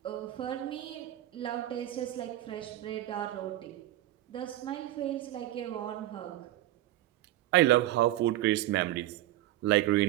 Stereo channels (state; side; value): quieter; left; 14.6 dB